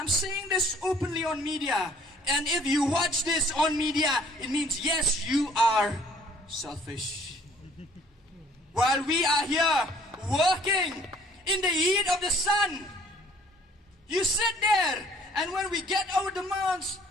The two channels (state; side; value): normal; both; correlation 0.58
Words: saying this openly on media. And if you watch this on media, it means yes, you are selfish. While we are here working in the heat of the sun. You sit there, and when we get our demands,